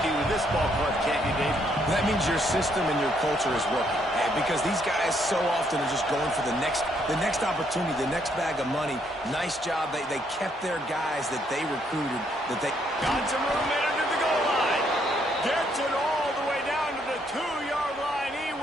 with this ball club, can't you, Dave? That means your system and your culture is working. Because these guys so often are just going for the next opportunity, the next bag of money. Nice job. They kept their guys that they recruited. Got some room in under the goal line. Gets it all the way down to the 2-yard line. He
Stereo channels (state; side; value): normal; both; correlation 0.71